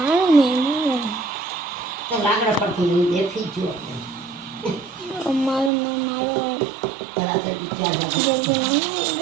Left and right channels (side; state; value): left; drops out; at 5.7 s